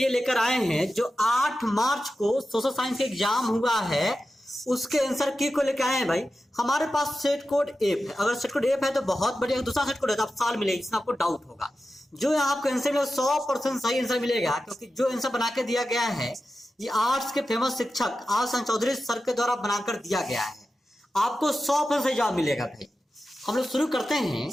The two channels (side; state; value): both; normal; correlation 0.92